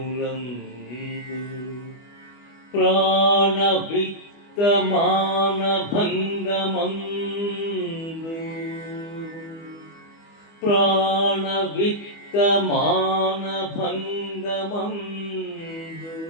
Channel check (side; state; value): right; late; 25 ms